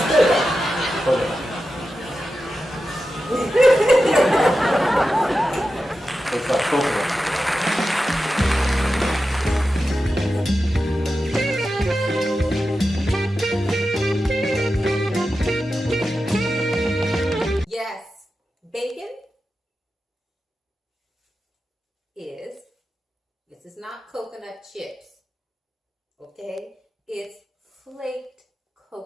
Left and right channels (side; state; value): both; normal; correlation 0.92